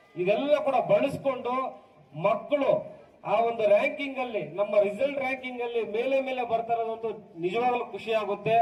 ಇದೆಲ್ಲ ಕೂಡ ಬಳಸಿಕೊಂಡು ಮಕ್ಕಳು ಆ ಒಂದು ರ್ಯಾಂಕಿಂಗ್ ಅಲ್ಲಿ, ನಮ್ಮ ರಿಸಲ್ಟ್ ರ್ಯಾಂಕಿಂಗ್ ಅಲ್ಲಿ ಮೇಲೆ ಬರ್ತಾ ಇರೋದಂತೂ ನಿಜವಾಗ್ಲೂ ಖುಷಿ ಆಗುತ್ತೆ.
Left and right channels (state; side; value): identical; both; correlation 1.00